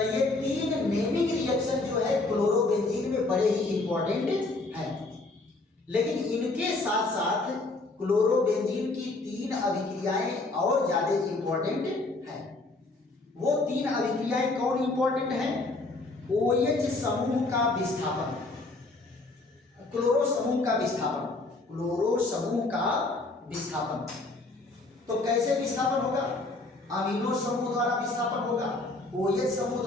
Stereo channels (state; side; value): quieter; right; 3.2 dB